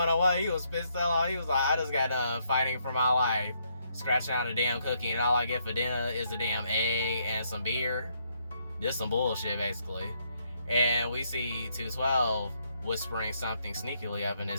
he was pissed off. He was like, I just got done fighting for my life, scratching out a damn cookie, and all I get for dinner is a damn egg and some beer. This some bullshit, basically. And we see 212 whispering something sneakily up in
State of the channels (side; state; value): both; inverted; correlation -0.73